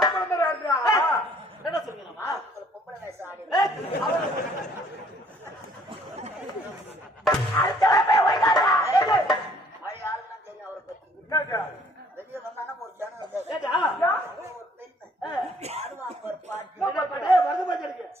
வெளியே வந்தானா ஒரு ஜனம்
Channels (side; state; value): both; normal; correlation 0.60